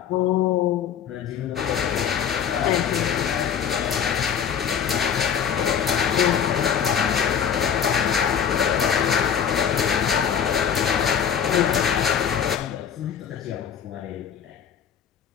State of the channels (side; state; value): right; quieter; 8.1 dB